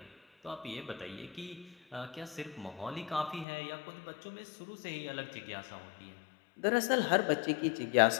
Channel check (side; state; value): right; drops out; at 3.5 s